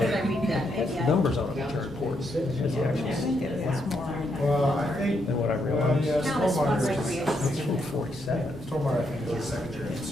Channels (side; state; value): both; normal; correlation 0.78